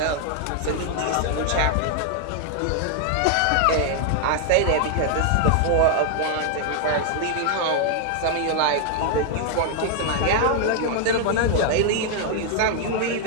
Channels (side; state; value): both; different; correlation 0.00